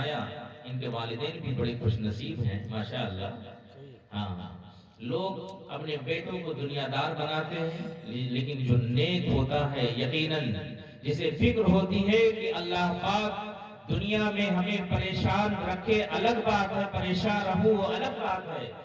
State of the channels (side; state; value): both; identical; correlation 1.00